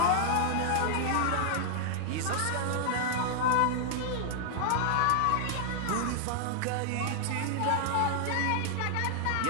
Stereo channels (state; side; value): different; both; correlation 0.00